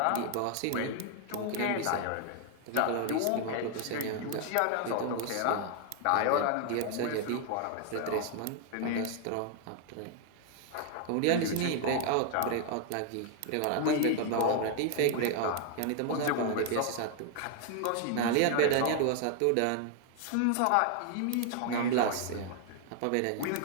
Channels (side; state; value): both; different; correlation 0.00